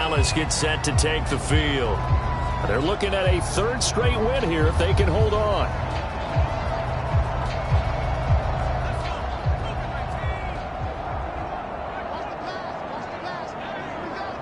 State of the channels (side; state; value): both; identical; correlation 1.00